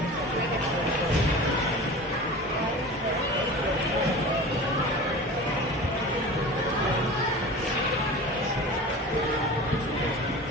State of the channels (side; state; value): both; normal; correlation 0.35